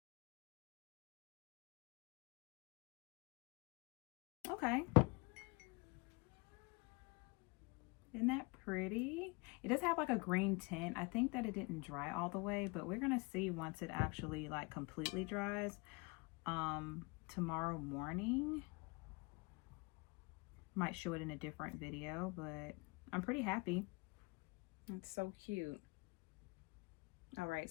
Okay. Isn't that pretty? It does have like a green tint. I think that it didn't dry all the way, but we're gonna see once it actually like completely dries tomorrow morning. Might show it in a different video, but I'm pretty happy. It's so cute. All right,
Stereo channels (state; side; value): quieter; right; 28.2 dB